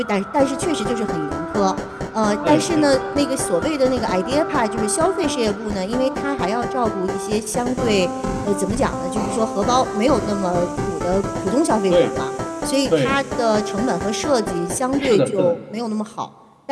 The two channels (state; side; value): identical; both; correlation 1.00